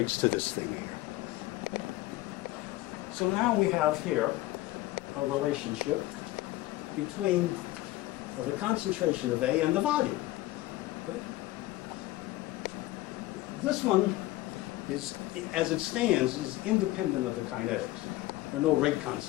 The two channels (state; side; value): quieter; right; 17.3 dB